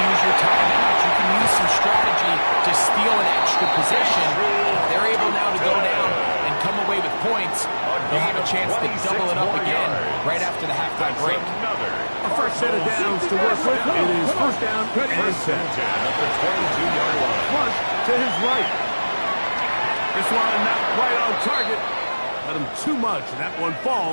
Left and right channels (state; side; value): inverted; both; correlation -1.00